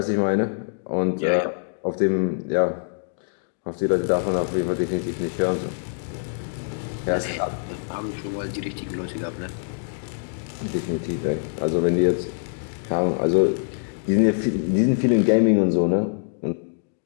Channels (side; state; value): right; silent; digital silence